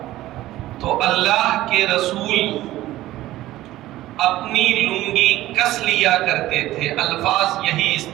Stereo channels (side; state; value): left; quieter; 15.6 dB